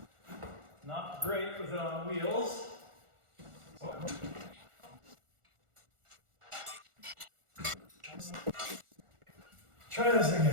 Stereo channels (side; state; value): left; late; 1.4 ms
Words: Not great with it on wheels. Try this